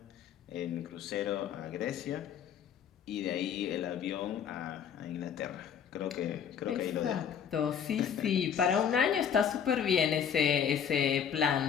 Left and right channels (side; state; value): right; quieter; 8.0 dB